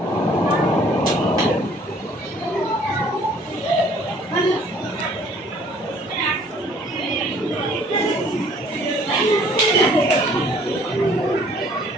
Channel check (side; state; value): both; normal; correlation 0.57